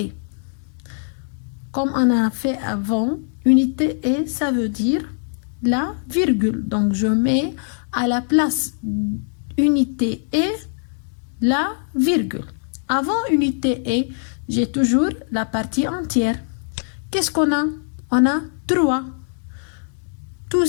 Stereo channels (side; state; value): right; silent; digital silence